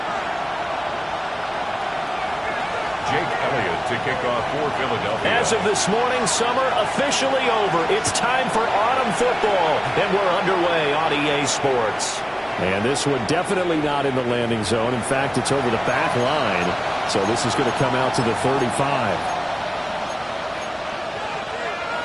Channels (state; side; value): identical; both; correlation 1.00